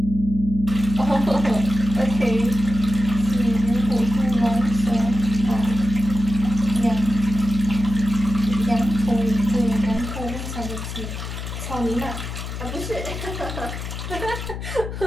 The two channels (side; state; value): left; noise; hum, 7 dB below the sound